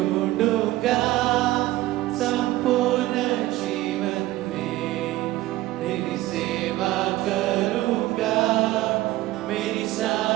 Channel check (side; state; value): left; quieter; 16.9 dB